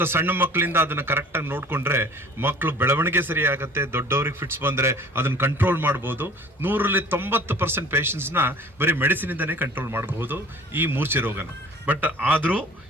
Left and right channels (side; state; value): both; normal; correlation 0.48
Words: ಸಣ್ಣ ಮಕ್ಕಳಿಂದ ಅದನ್ನು ಕರೆಕ್ಟಾಗಿ ನೋಡಿಕೊಂಡ್ರೆ ಮಕ್ಕಳು ಬೆಳವಣಿಗೆ ಸರಿ ಆಗುತ್ತೆ. ದೊಡ್ಡವ್ರಿಗೆ ಫಿಟ್ಸ್ ಬಂದರೆ ಅದನ್ನು ಕಂಟ್ರೋಲ್ ಮಾಡ್ಬೋದು. 100ರಲ್ಲಿ 90% ಪೇಷಂಟ್ಸ್ನ ಬರೀ ಮೆಡಿಸಿನಿಂದನೇ ಕಂಟ್ರೋಲ್ ಮಾಡಬಹುದು ಈ ಮೂರ್ಛೆ ರೋಗನ. ಬಟ್ ಆದರೂ